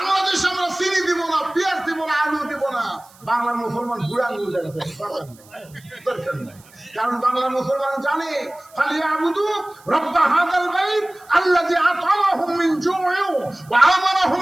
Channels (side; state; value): right; noise; hiss, 26 dB below the sound